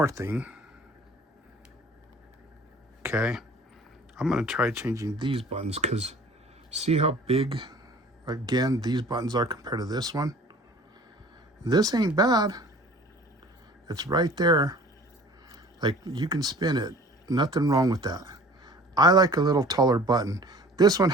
thing. Okay, I'm gonna try changing these buttons because see how big, again, these buttons are compared to this one? This ain't bad. It's right there. Like, you can spin it. Nothing wrong with that. I like a little taller button. This one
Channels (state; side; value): normal; both; correlation 0.46